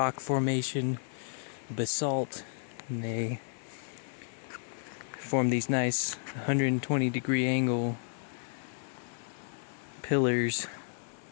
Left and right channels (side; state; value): right; silent; 56 dB below the other